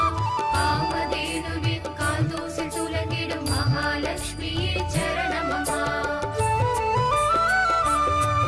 காமதேனுவின் கால் தூசில் துலங்கிடும் மகாலட்சுமியே சரணமம்மா.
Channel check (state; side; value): identical; both; correlation 1.00